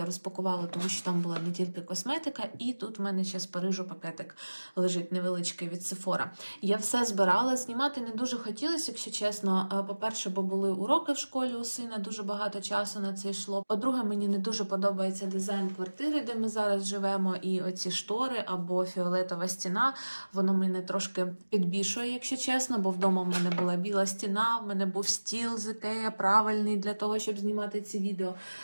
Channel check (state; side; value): inverted; both; correlation -1.00